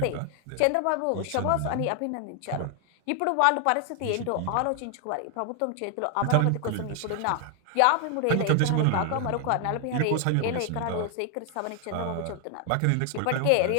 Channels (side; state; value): both; different; correlation 0.00